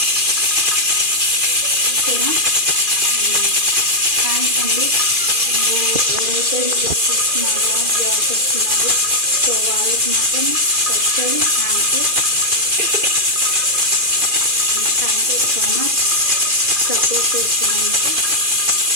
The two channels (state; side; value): late; left; 2.4 ms